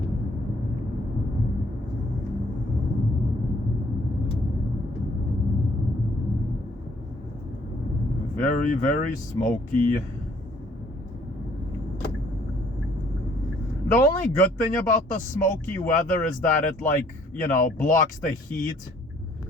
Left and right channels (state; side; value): normal; both; correlation 0.62